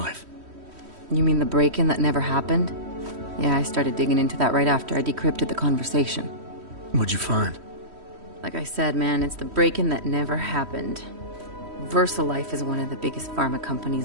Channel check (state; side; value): late; left; 3.1 ms